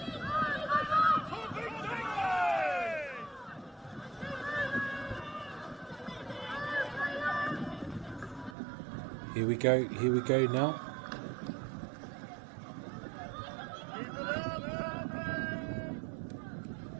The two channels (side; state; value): left; drops out; at 8.6 s